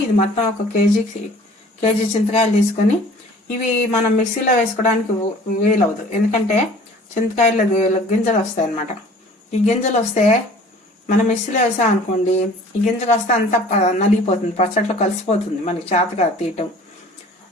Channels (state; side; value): normal; both; correlation 0.48